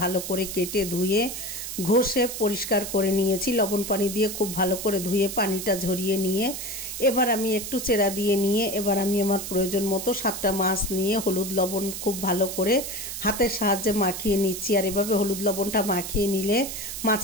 ভালো করে কেটে ধুয়ে ঘষে পরিষ্কার করে নিয়েছি। লবণ পানি দিয়ে খুব ভালো করে ধুয়ে পানিটা ঝরিয়ে নিয়ে এবার আমি একটু চেরা দিয়ে নিয়ে এবার আমি আমার প্রয়োজন মতো 7টা মাছ নিয়ে হলুদ লবণ খুব ভালো করে হাতের সাহায্যে মাখিয়ে নিচ্ছি। আর এভাবে হলুদ লবণটা মাখিয়ে নিলে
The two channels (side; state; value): right; noise; hiss, 7 dB below the sound